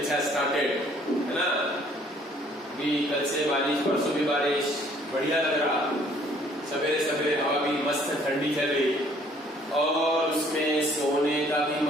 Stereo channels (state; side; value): normal; both; correlation 0.60